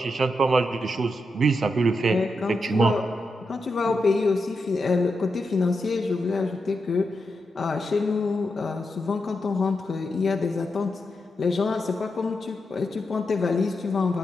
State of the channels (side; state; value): both; normal; correlation 0.86